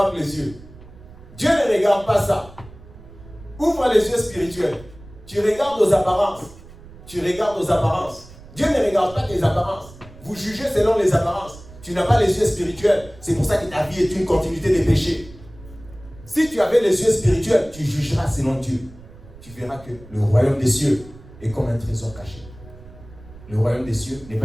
les yeux. Dieu ne regarde pas ça. Ouvre les yeux spirituels. Tu regardes aux apparences. Tu regardes aux apparences. Dieu ne regarde pas tes apparences. Vous jugez selon les apparences. Tu n'as pas les yeux spirituels. C'est pour ça que ta vie est une continuité de péché. Si tu avais les yeux spirituels, tu jugeras selon Dieu. Tu verras que le royaume des cieux est comme un trésor caché. Le royaume des cieux n'est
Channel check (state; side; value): noise; right; rumble, 20 dB below the sound